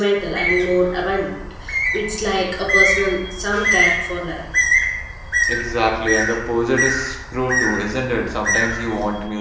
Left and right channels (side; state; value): both; identical; correlation 1.00